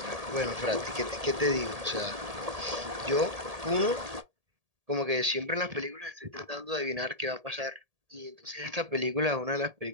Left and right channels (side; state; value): left; late; 1.8 ms